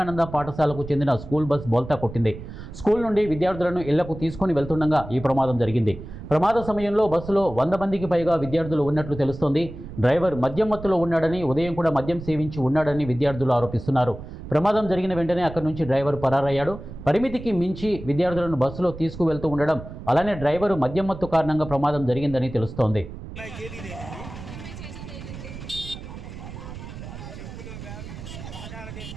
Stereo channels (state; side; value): noise; right; rumble, 12 dB below the sound